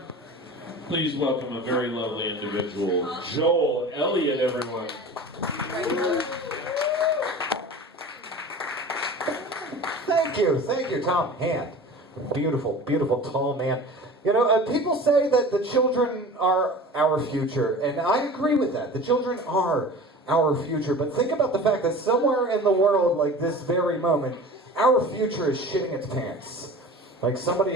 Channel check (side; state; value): both; normal; correlation 0.38